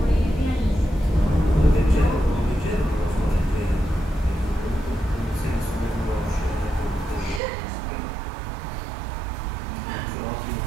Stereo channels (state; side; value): drops out; left; at 7.4 s